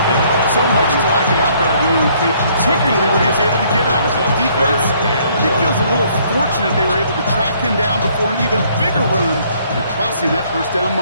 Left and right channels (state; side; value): inverted; both; correlation -0.64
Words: So much to like about that run, Kate, particularly when he was able to get out of it. Defense, I think feels a little fortunate they were able to track him down before an even bigger run and crossing that 1st down